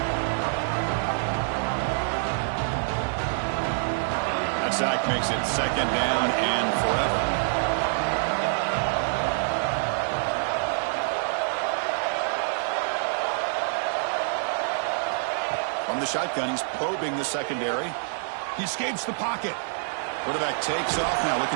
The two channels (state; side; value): silent; left; digital silence